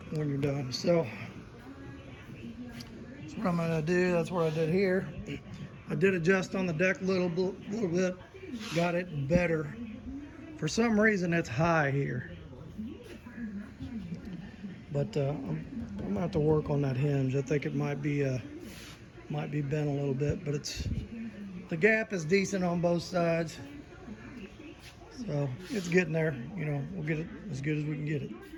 you're done. So that's what I'm gonna do. That's what I did here. I did adjust on the deck a little bit, got it better. For some reason it's high here, but I'm gonna have to work on that hinge. I think it might be bent a little bit, but the gap is decent on both sides, so it's getting there. You know, we'll get it as good as we can get it.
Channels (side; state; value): both; identical; correlation 1.00